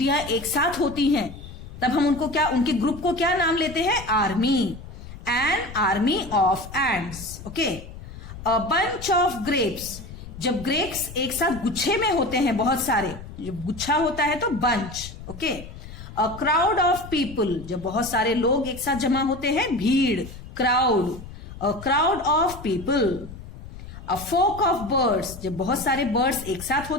एक साथ होती हैं तब हम उनको क्या, उनके ग्रुप को क्या नाम लेते हैं, army. N army of ends. Okay, a bunch of grapes, जब ग्रेप्स एक साथ गुच्छे में होते हैं, बहुत सारे, जब गुच्छा होता है तो bunch. Okay, a crowd of people, जब बहुत सारे लोग एक साथ जमा होते हैं, भीड़, crowd. A crowd of people. A flock of birds, जब बहुत सारे बर्ड्स एक साथ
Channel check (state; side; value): noise; left; rumble, 14 dB below the sound